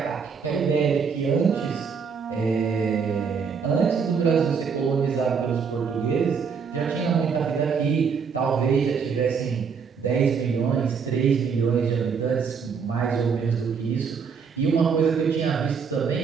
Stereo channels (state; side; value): quieter; left; 6.1 dB